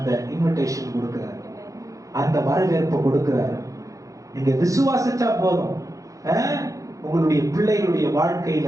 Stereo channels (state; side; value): late; left; 0.16 ms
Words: இன்விடேஷன் கொடுக்கிறார், அந்த வரவேற்பு கொடுக்கிறார். நீங்க விசுவாசிச்சா போதும். உங்களுடைய பிள்ளைகளுடைய